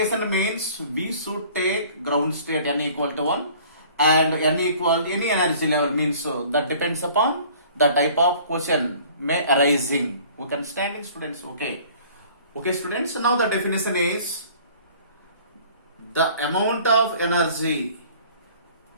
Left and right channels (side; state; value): both; inverted; correlation -0.51